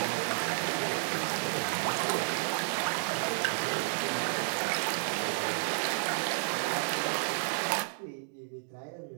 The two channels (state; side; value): silent; left; digital silence